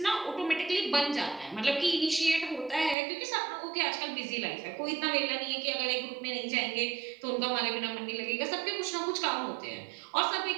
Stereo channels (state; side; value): drops out; left; at 3.0 s